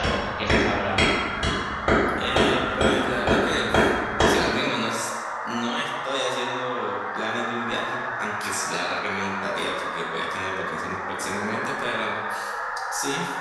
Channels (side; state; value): both; identical; correlation 1.00